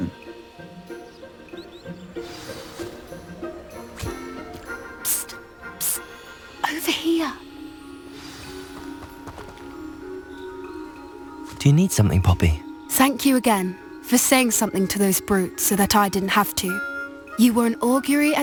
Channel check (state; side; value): identical; both; correlation 1.00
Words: Psst, psst. Over here. Do you need something, Poppy? Thank you again for saying something to those brutes so that I didn't have to. You were an augury